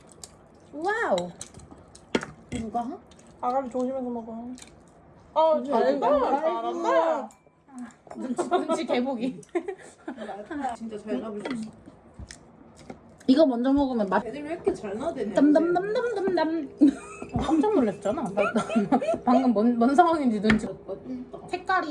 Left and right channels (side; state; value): both; identical; correlation 1.00